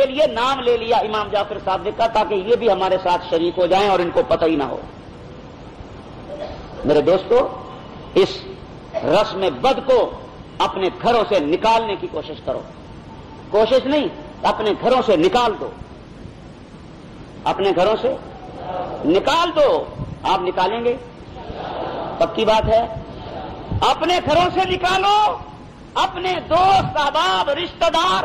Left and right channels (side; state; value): both; identical; correlation 1.00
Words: لیے نام لے لیا امام جعفر صادق کا, تاکہ یہ بھی ہمارے ساتھ شریک ہو جائیں اور ان کو پتہ ہی نہ ہو. میرے دوستو, اس رسم بد کو اپنے گھروں سے نکالنے کی کوشش کرو. کوشش نہیں, اپنے گھروں سے نکال دو, اپنے گھروں سے نکال دو. آپ نکالیں گے؟ پکی بات ہے. اپنے گھروں سے نکالو, اپنے دوست احباب رشتہ دار